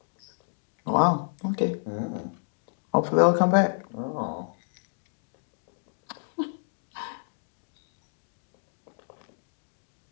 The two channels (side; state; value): right; silent; digital silence